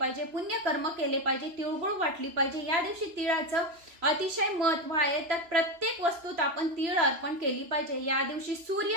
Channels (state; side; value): late; left; 3.0 ms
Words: पुण्यकर्म केले पाहिजे, तिळगुळ वाटली पाहिजे। या दिवशी तिळाचं अतिशय महत्व आहे, तर प्रत्येक वस्तूत आपण तीळ अर्पण केली पाहिजे। या दिवशी